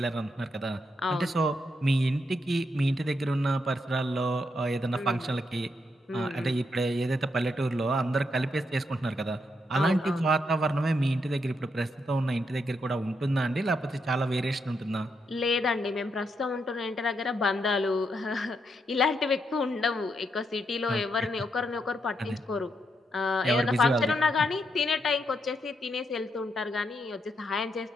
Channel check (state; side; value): normal; both; correlation 0.80